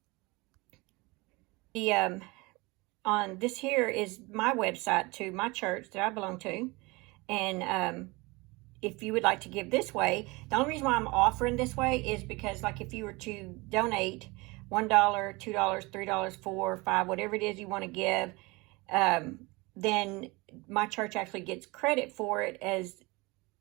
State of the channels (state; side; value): quieter; left; 24.5 dB